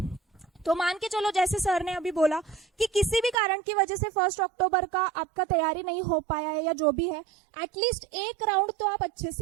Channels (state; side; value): drops out; left; at 3.4 s